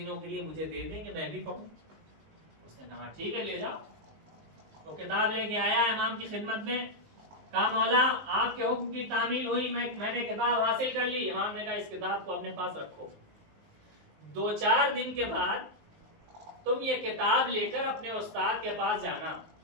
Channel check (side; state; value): left; late; 19 ms